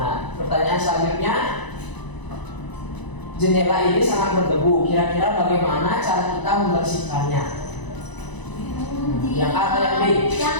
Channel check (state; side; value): late; right; 1.0 ms